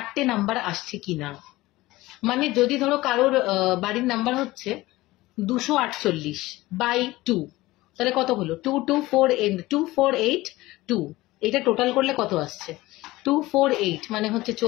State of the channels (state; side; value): quieter; right; 18.7 dB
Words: নাম্বার আসছে কিনা। মানে যদি ধরো কারোর বাড়ির নাম্বার হচ্ছে 248 বাই 2, তাহলে কত হলো 248, এটা টোটাল করলে কত আসছে 248, মানে হচ্ছে